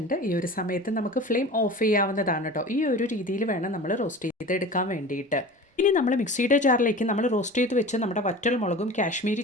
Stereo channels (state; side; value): normal; both; correlation 0.37